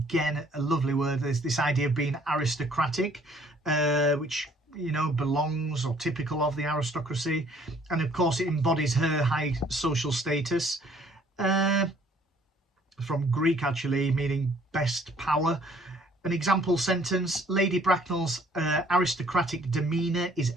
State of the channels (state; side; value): normal; both; correlation 0.59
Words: a lovely word, is this idea of being aristocratic, which, you know, belongs or typical of the aristocracy. And of course, it embodies her high social status. From Greek, actually, meaning best power. An example sentence: Lady Bracknell's aristocratic demeanour is